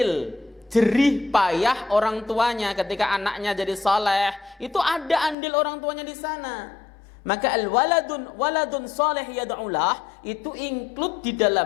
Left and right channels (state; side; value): drops out; right; at 5.4 s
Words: jerih payah orang tuanya. Ketika anaknya jadi saleh, itu ada andil orang tuanya di sana. Maka waladun saleh yad'ulah itu include di